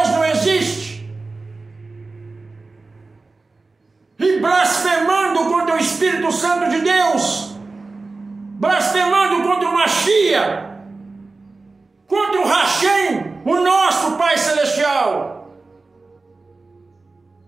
não existe, e blasfemando contra o Espírito Santo de Deus, blasfemando contra o Mashiach, contra o Hashem, o nosso Pai Celestial.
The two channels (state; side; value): quieter; left; 3.6 dB